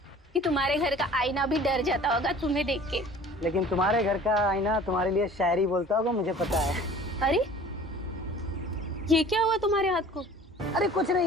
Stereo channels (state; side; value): normal; both; correlation 0.47